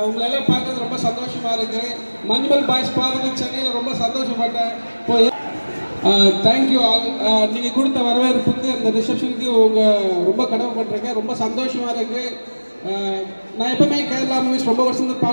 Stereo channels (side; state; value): both; inverted; correlation -1.00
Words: உங்களெல்லாம் பார்க்கறது ரொம்ப சந்தோஷமா இருக்கு. மஞ்சுமல் பாய்ஸ் பார்த்து சென்னையில் ரொம்ப சந்தோஷப்பட்டேன். Thank you all. நீங்கள் கொடுத்த வரவேற்புக்கு, இந்த ரிசப்ஷனுக்கு ரொம்ப கடமைப்பட்டிருக்கேன். ரொம்ப சந்தோஷமா இருக்கு. நான் எப்பவுமே கேரளா மூவிஸ் ரொம்ப வருஷம்